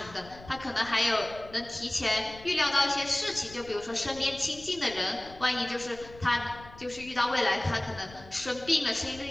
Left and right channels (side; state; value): left; noise; rumble, 19 dB below the sound